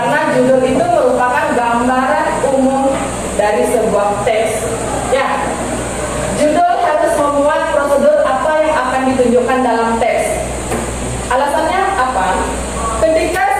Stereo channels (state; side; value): identical; both; correlation 1.00